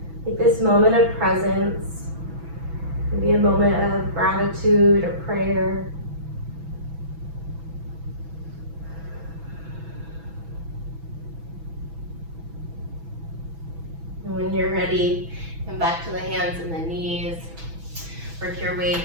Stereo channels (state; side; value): late; left; 6.1 ms